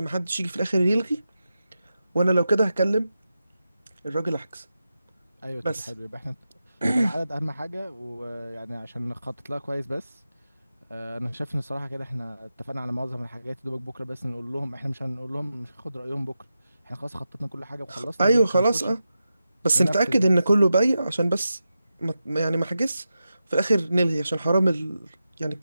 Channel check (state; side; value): inverted; both; correlation -0.90